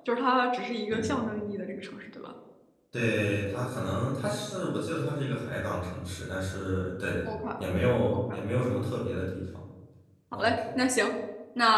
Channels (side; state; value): both; identical; correlation 1.00